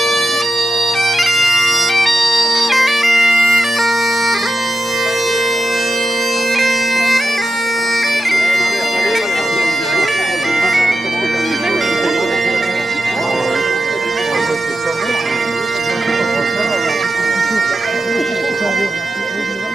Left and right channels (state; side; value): normal; both; correlation 0.90